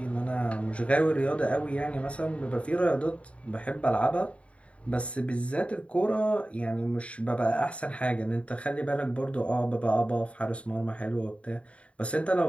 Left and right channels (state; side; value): late; right; 0.063 ms